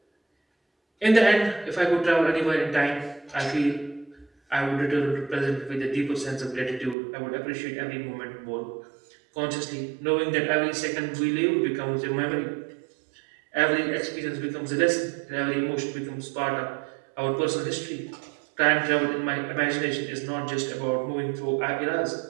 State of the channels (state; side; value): drops out; left; at 7.0 s